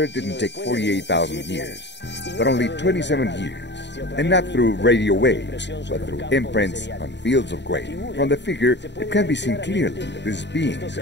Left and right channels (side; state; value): right; late; 0.51 ms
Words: didn't take 48,000 years, but only 27 years. And not through radio waves, but through imprints on fields of grain. From the figure, it can be seen clearly that these beings